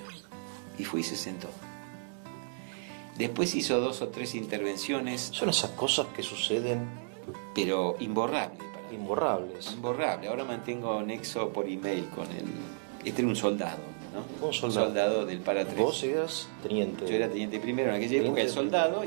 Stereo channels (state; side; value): silent; left; digital silence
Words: Y fui y se sentó. Después hizo 2 o 3 intervenciones. Son esas cosas que suceden... Pero imborrables. Imborrables. Imborrable. Ahora mantengo nexo por email con él. Este era un soldado, ¿no? Un soldado. Soldado del Para 3. Vos eras teniente. Yo era teniente primero en aquella época, el soldado,